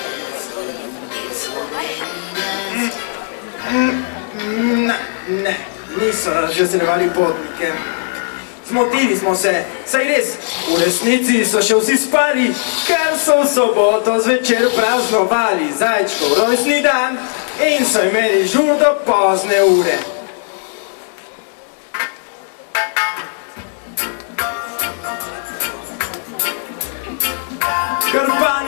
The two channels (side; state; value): right; silent; 64 dB below the other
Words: Ne, niso razveseljevali potnike. Zmotili smo se, saj res, v resnici so še vsi spali, ker so v soboto zvečer praznovali zajčkov rojstni dan in so imeli žur do pozne ure.